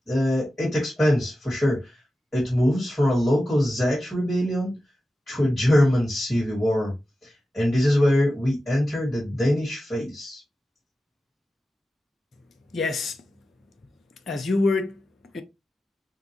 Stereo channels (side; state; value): both; normal; correlation 0.93